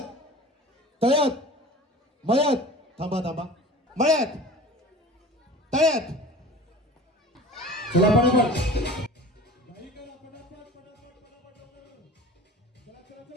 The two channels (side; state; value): both; normal; correlation 0.40